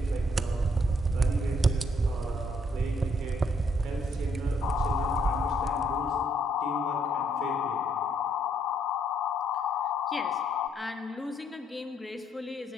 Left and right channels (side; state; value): both; normal; correlation 0.70